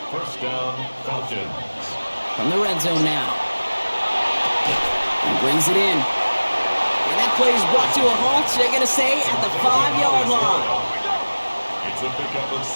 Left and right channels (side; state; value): both; inverted; correlation -1.00